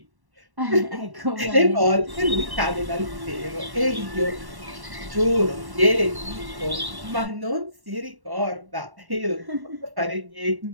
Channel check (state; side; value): late; left; 1.1 ms